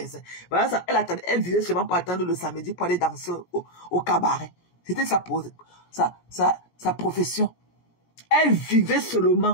Voilà ça. Elle vivait seulement pour attendre le samedi pour aller danser au cabaret. C'était sa profession. Elle vivait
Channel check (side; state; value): right; late; 17 ms